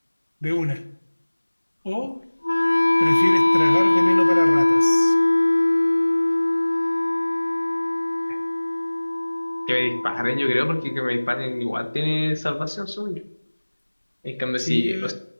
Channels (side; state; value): both; inverted; correlation -1.00